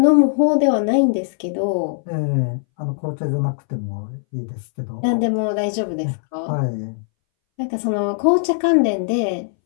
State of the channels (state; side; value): silent; right; 63 dB below the other